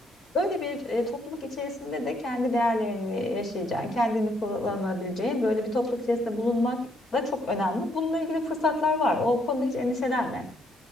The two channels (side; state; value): both; normal; correlation 0.71